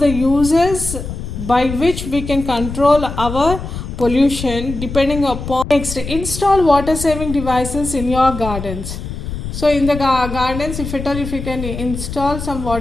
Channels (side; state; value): left; noise; rumble, 7 dB below the sound